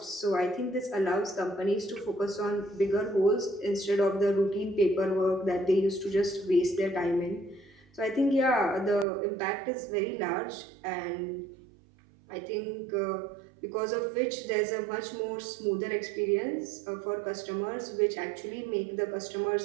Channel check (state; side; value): drops out; left; at 9.1 s